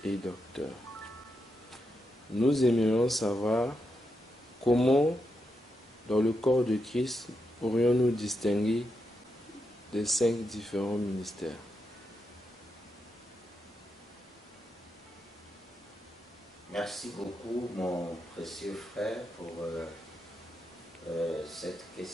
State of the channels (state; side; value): normal; both; correlation 0.85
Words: et docteurs. Nous aimerions savoir comment, dans le corps de Christ, pourrions-nous distinguer les 5 différents ministères. Merci beaucoup, mon précieux frère, pour cette